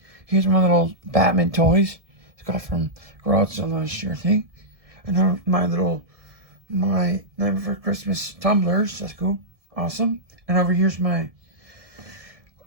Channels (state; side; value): late; left; 1.7 ms